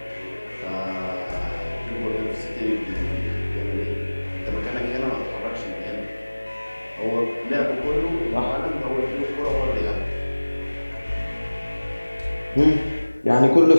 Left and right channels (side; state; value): both; inverted; correlation -1.00